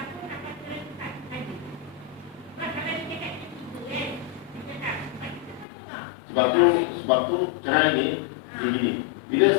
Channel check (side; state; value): right; drops out; at 5.7 s